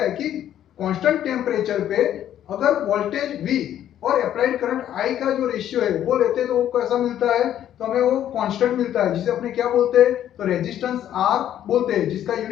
है कि कांस्टेंट टेम्परेचर पे अगर वोल्टेज V और अप्लाइड करंट I का जो रेशियो है वो लेते हैं तो वो कैसा मिलता है? तो हमें वो कांस्टेंट मिलता है जिसे अपने क्या बोलते हैं? तो रेजिस्टेंस R बोलते हैं जिसका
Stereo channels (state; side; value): quieter; right; 11.1 dB